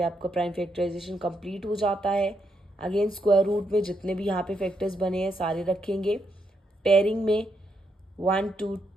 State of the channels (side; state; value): both; normal; correlation 0.79